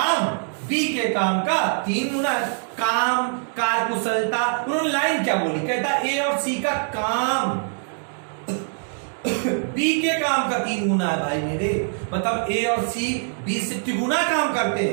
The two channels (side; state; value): left; silent; 63 dB below the other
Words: बी के काम का 3 गुना, काम कार्यकुशलता, उन्होंने लाइन क्या बोली, कहता ए और सी का काम बी के काम का 3 गुना है भाई मेरे, मतलब ए और सी बी से तिगुना काम करते